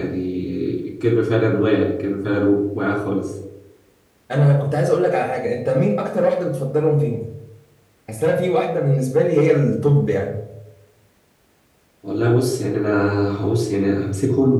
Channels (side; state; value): both; identical; correlation 1.00